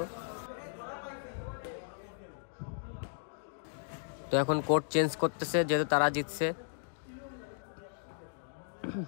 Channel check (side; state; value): right; silent; digital silence